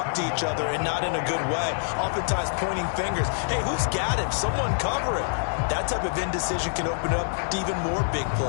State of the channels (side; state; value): right; silent; digital silence